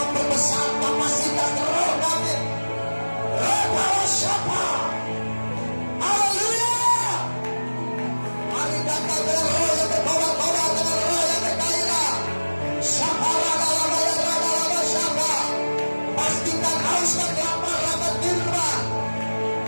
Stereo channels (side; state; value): both; inverted; correlation -1.00